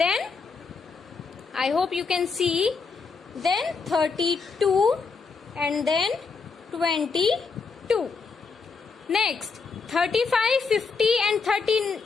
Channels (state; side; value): quieter; right; 4.9 dB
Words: I hope you can see. Then 32 and then 22. Next, 35, 50 and